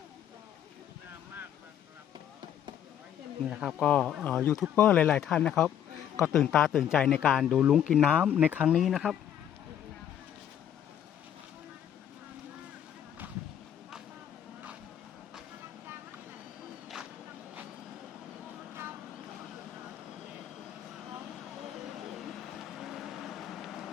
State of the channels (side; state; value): right; quieter; 9.9 dB